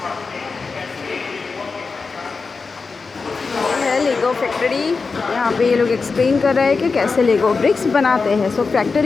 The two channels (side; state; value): right; quieter; 4.5 dB